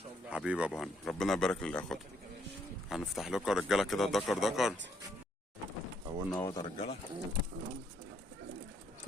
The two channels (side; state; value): both; normal; correlation 0.70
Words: شاء الله. حبيبي ابو هنا، ربنا يبارك للاخوات. يا باشا. هنفتح لكم يا رجاله كده دكر. اولنا اهوت يا رجاله.